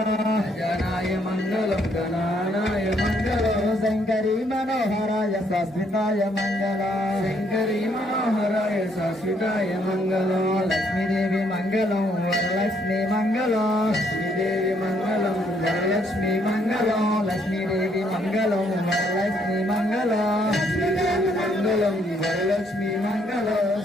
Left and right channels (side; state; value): both; normal; correlation 0.70